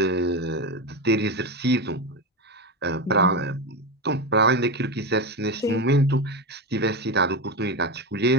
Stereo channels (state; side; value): normal; both; correlation 0.16